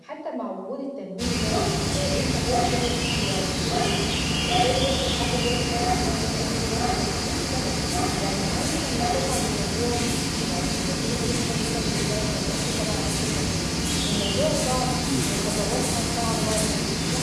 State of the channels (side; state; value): both; identical; correlation 1.00